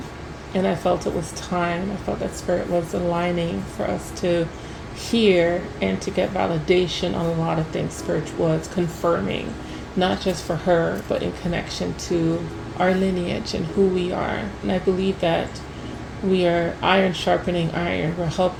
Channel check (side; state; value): both; identical; correlation 1.00